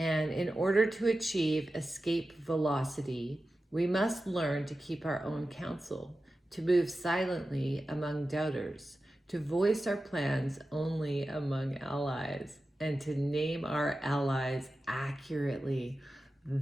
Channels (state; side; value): normal; both; correlation 0.93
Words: in order to achieve escape velocity, We must learn to keep our own counsel, to move silently among doubters, to voice our plans only among allies, and to name our allies accurately.